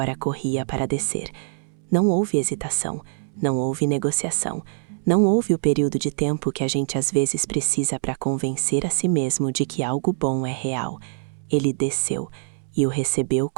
corria para descer. Não houve hesitação, não houve negociação, não houve o período de tempo que a gente às vezes precisa para convencer a si mesmo de que algo bom é real. Ele desceu e o recebeu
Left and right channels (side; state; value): left; silent; 63 dB below the other